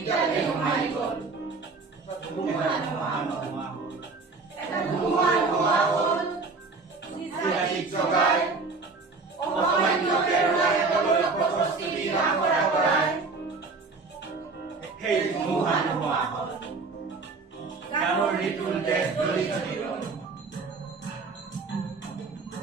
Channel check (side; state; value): left; quieter; 4.1 dB